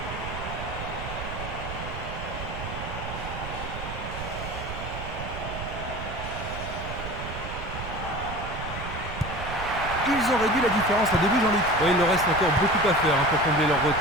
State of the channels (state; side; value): noise; right; rumble, 8 dB below the sound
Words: Ils ont réduit la différence à 2 buts, Jean-Luc. Oui, il leur reste encore beaucoup à faire pour combler leur